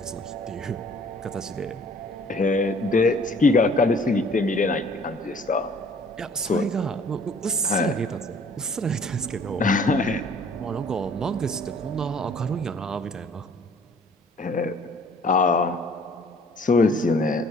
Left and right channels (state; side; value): normal; both; correlation 0.55